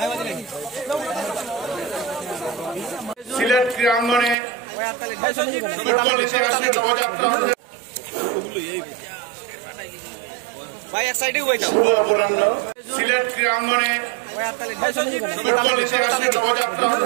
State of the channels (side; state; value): left; drops out; at 4.4 s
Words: সিলেট ক্রীড়াঙ্গনে ফুটবল ইতিহাসে নবযাত্রা সিলেট ক্রীড়াঙ্গনে ফুটবল ইতিহাসে নবযাত্রা হতে